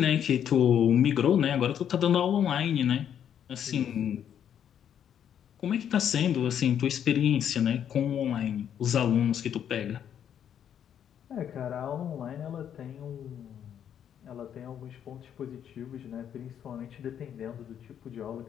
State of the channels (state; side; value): quieter; right; 9.2 dB